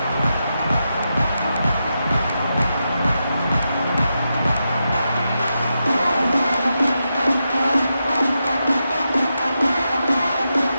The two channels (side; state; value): both; inverted; correlation -0.87